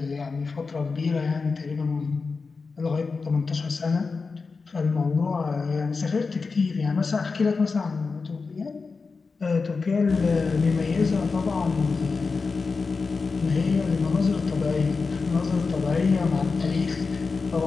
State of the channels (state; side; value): quieter; right; 4.5 dB